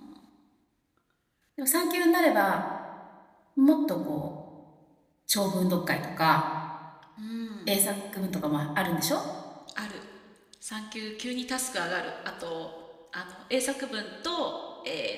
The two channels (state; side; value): identical; both; correlation 1.00